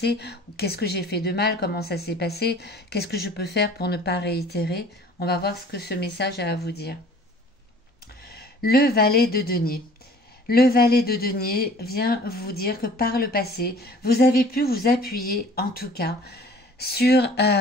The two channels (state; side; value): normal; both; correlation 0.49